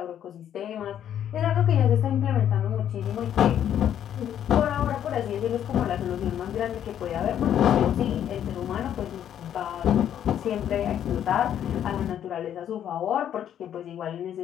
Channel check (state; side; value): quieter; right; 10.0 dB